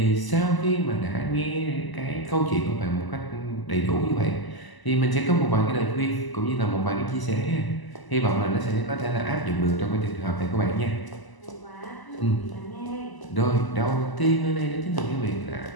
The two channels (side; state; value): right; late; 1.0 ms